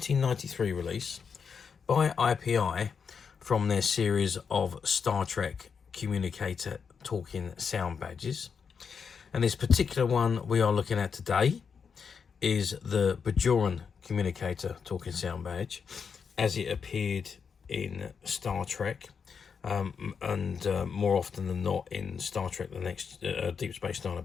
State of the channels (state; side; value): quieter; right; 6.2 dB